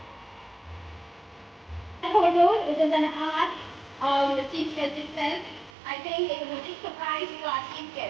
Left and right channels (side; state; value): left; drops out; at 5.7 s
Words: Photo, it is an art of the chief guest itself. I think it is a big surprise to our chief